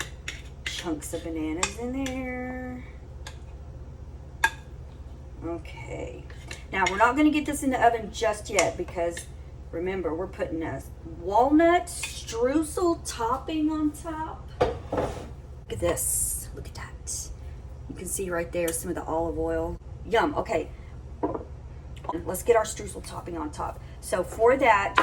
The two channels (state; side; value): identical; both; correlation 1.00